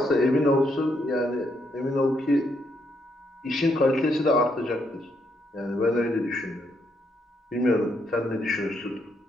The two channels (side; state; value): both; normal; correlation 0.76